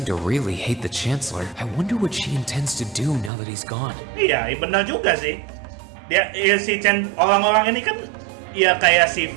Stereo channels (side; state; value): left; drops out; at 3.3 s